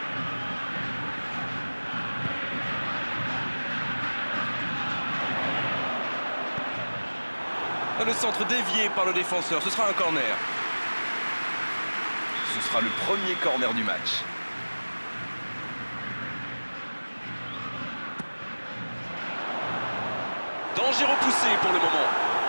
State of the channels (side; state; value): both; inverted; correlation -1.00